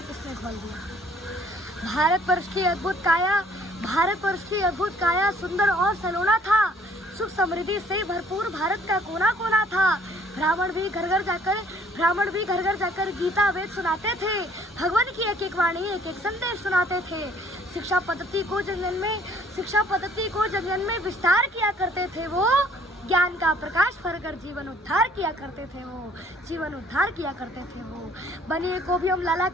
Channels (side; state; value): both; normal; correlation 0.59